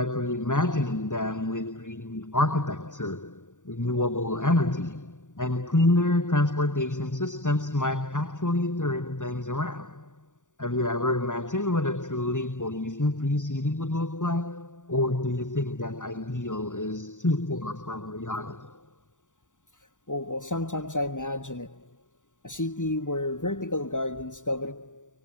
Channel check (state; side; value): late; right; 0.86 ms